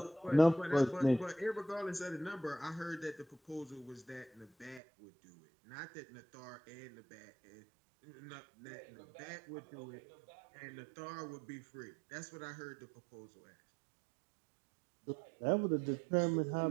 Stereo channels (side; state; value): left; drops out; at 4.8 s